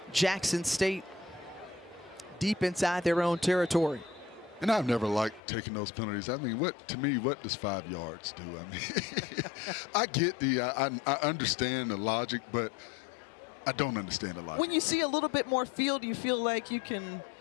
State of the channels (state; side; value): drops out; right; at 5.4 s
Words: Jackson State deep inside their own territory. And I've never liked taking those penalties. I mean, what does 5 yards do? I mean, I get I understand the logic, but I don't understand the logic. When you see a little bit more field, you feel like you can